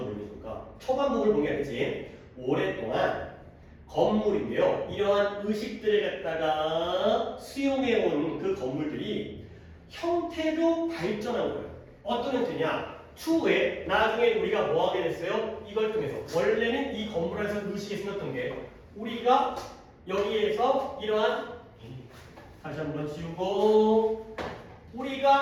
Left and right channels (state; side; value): identical; both; correlation 1.00